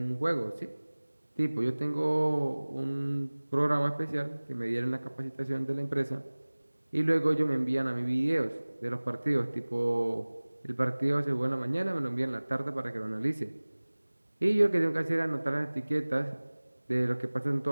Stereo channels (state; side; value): inverted; both; correlation -1.00